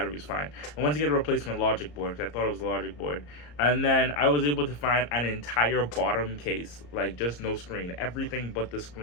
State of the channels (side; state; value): right; late; 34 ms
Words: was fine. I went to get a replacement logic board because I thought it was a logic board, and then I was able to find an entire bottom case, like just no screen, everything but the